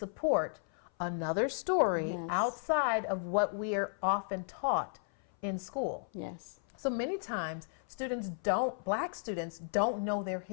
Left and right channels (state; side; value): silent; right; 55 dB below the other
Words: another story outside of what we are often taught in school. So many times Black students don't know their